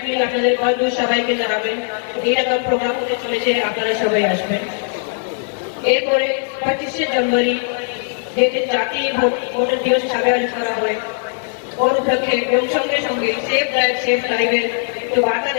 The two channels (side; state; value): right; silent; 60 dB below the other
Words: আপনাদের বন্ধু সবাইকে জানাবেন এইরকম প্রোগ্রাম হতে চলেছে, আপনারা সবাই আসবেন। এরপরে 25শে জানুয়ারি যেদিন জাতীয় ভোটার দিবস হিসাবে আয়োজন করা হয়, ওর উপলক্ষে এবং সঙ্গে সঙ্গে সেফ ড্রাইভ সেফ লাইভের একটু বার্তা